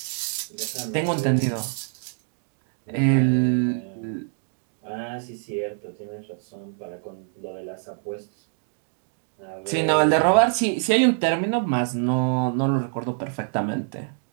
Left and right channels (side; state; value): left; silent; 59 dB below the other